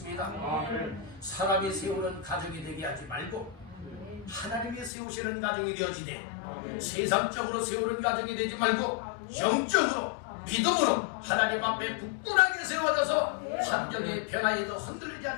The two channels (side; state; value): right; drops out; at 4.9 s